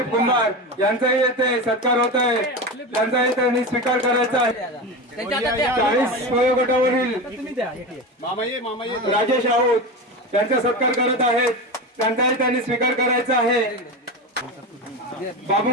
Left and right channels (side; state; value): both; normal; correlation 0.23